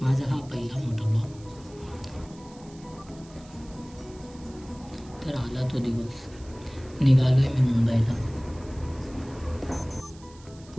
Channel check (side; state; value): right; noise; hiss, 24 dB below the sound